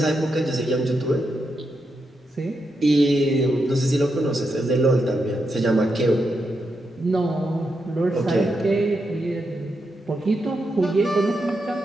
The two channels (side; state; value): both; normal; correlation 0.84